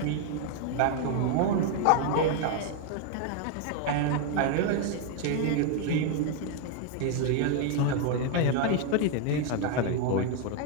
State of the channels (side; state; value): both; different; correlation 0.01